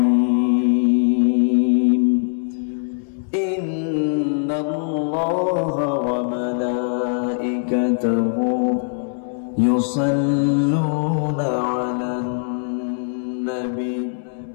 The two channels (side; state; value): right; silent; digital silence